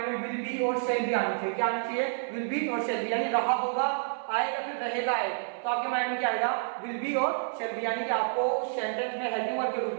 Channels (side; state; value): left; silent; 58 dB below the other